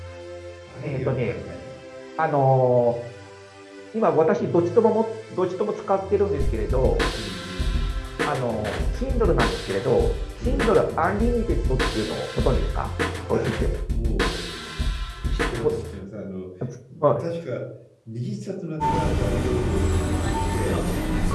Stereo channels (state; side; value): identical; both; correlation 1.00